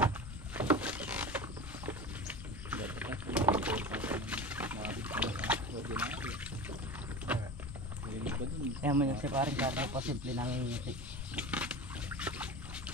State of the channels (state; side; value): normal; both; correlation 0.30